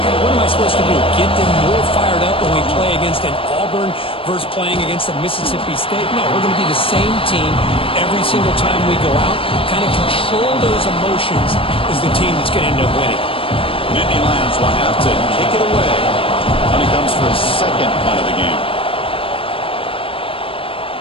what am I supposed to do? Get them more fired up when we play against an Auburn versus playing against a Mississippi State? No, we're going to be the same team every single time we go out. Kind of control those emotions is the team that's going to end up winning. Nittany Lions will have to kick it away when he comes for his 2nd punt of the game.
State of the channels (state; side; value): late; right; 0.26 ms